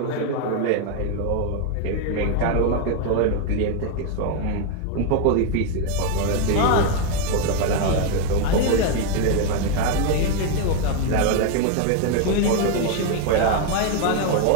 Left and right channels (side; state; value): both; different; correlation 0.01